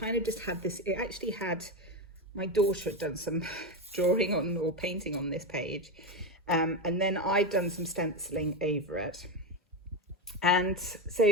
of just had this, it actually had, my daughter had done some drawing on or painting on this page. And then I'd done some stenciling over it. And so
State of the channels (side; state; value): both; normal; correlation 0.15